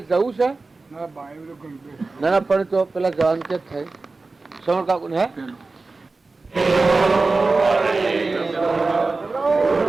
જવું છે ના ના પણ તો પેલા જવાનું ક્યાં થાય શ્રવણ કાકુ ને હે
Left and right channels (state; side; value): quieter; left; 3.7 dB